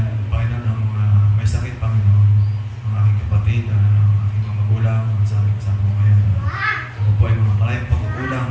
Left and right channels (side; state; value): both; identical; correlation 1.00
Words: Panginoon, ng mga may sakit, Panginoon, ang aking kapatid, ang aking mga magulang, ang sa aming kasama ko ngayon. Ako po ay mga maraming pagkukulang